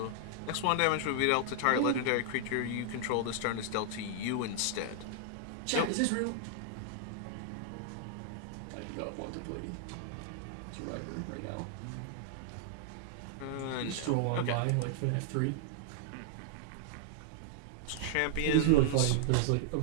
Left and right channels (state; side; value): different; both; correlation -0.01